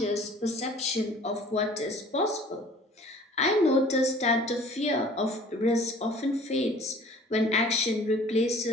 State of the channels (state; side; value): normal; both; correlation 0.50